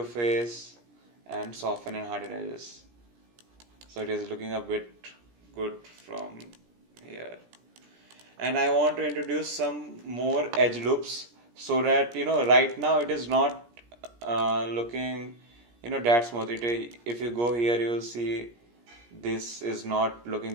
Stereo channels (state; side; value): late; left; 17 ms